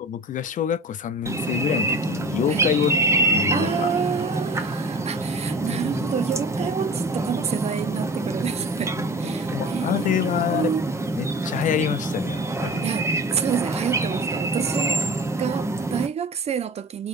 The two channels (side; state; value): both; normal; correlation 0.38